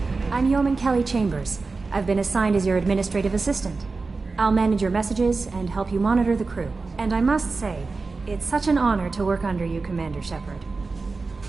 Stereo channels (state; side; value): quieter; left; 4.0 dB